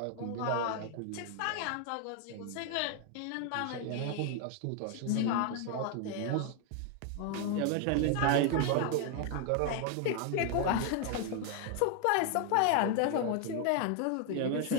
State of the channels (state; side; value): different; both; correlation 0.00